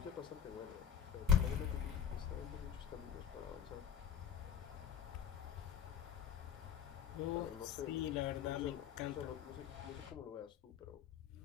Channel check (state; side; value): quieter; right; 8.6 dB